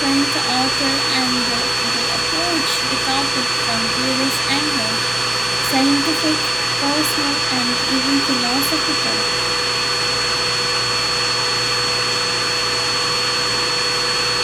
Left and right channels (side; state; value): left; noise; hum, 20 dB below the sound